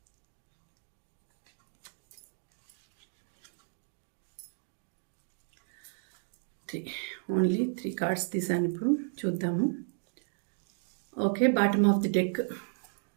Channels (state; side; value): silent; left; digital silence